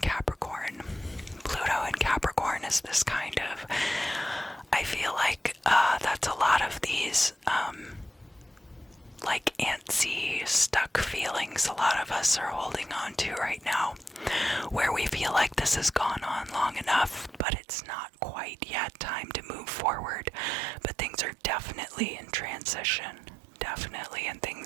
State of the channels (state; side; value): drops out; left; at 17.4 s